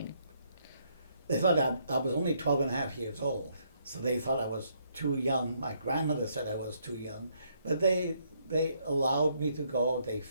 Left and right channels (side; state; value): both; inverted; correlation -0.72